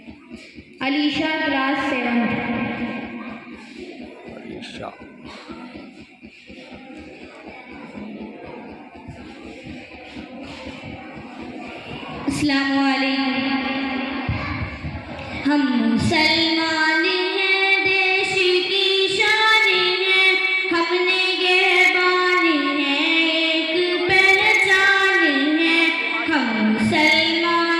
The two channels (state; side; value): identical; both; correlation 1.00